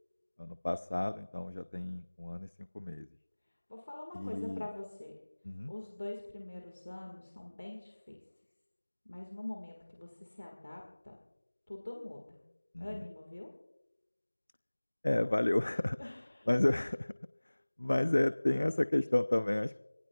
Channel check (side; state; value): both; inverted; correlation -1.00